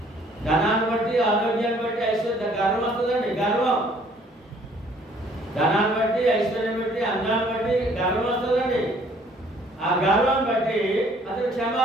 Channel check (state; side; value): normal; both; correlation 0.59